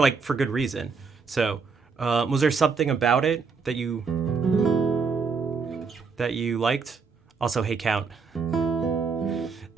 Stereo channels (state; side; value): quieter; left; 5.1 dB